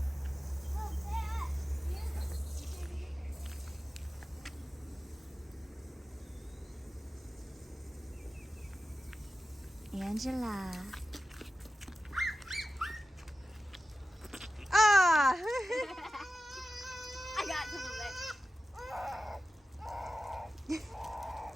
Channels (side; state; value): both; normal; correlation 0.94